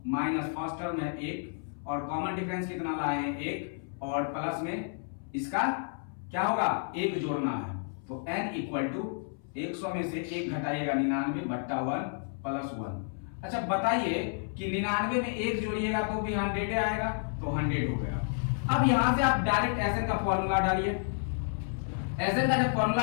माइनस फर्स्ट टर्म है 1 और कॉमन डिफरेंस कितना लाए हैं 1 और प्लस में इसका क्या होगा 1 जोड़ना है। तो n इक्वल टू 100 में से 1 घटाइएगा 99 बट्टा 1 प्लस 1। अच्छा बताइए कि 99 में 1 जोड़िएगा तो भी 100 आएगा, तो 100 हो गया। अब यहां से आप डायरेक्ट एसएन का फॉर्मूला डालिए। एसएन का जब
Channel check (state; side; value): silent; right; 57 dB below the other